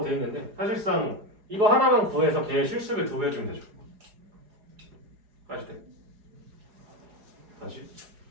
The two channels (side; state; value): left; late; 4.8 ms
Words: 돼 있는데 사실상 이거 하나만 구해서 걔의 실습을 2배 해주면 되죠. 아시죠? 다시